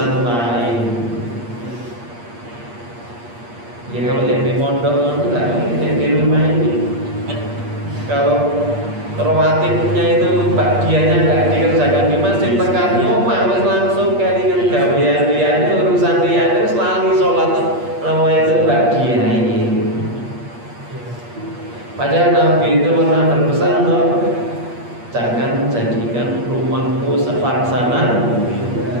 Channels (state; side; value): late; left; 8.5 ms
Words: lain. Ya kalau yang di pondok itu enggak, yang di rumah ini kalau rawatibnya itu bagiannya enggak dikerjakan di masjid, tekan omah wis langsung kelingan gawean-gaweane urusan liyane wis lali salat namanya itu bagian ini. Padahal Nabi itu pernah berpesan loh, jangan jadikan rumahmu sepelaksana